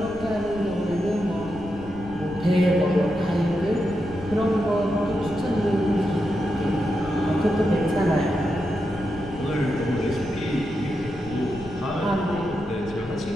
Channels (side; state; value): left; noise; rumble, 16 dB below the sound